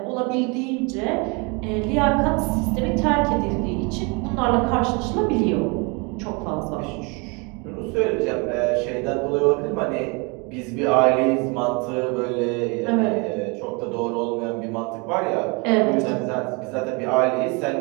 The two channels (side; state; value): left; quieter; 30.5 dB